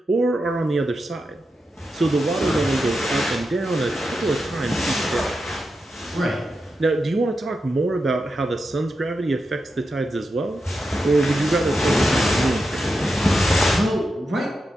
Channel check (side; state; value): both; normal; correlation 0.88